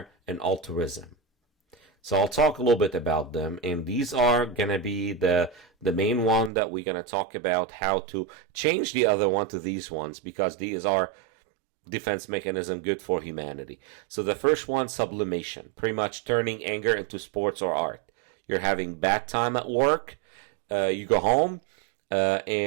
and altruism. So I'll talk a little bit about them, and these are going to be the main one that we're going to talk about how to change the other one to these ones, because these are defense mechanism good for humanity. So the first one, sublimation, pretty much turning anger into sports or art. You're having bad time at work, you go home,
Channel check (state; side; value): drops out; left; at 6.5 s